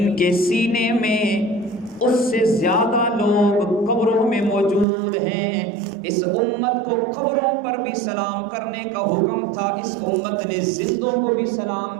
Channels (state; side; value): drops out; left; at 4.9 s